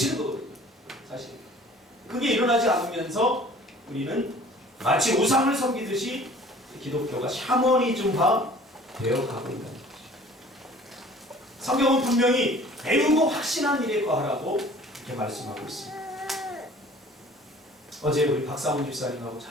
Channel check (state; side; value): normal; both; correlation 0.49